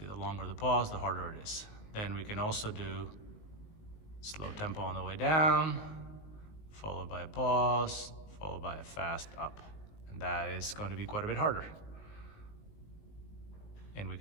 the longer the pause, the harder it is. Then we can also do slow tempo on the way down, followed by a pause, followed by a fast up. And that is going to be quite a bit harder. And we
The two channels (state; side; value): late; right; 19 ms